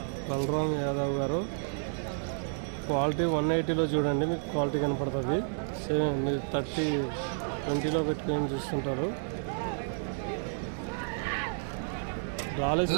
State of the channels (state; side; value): silent; left; 57 dB below the other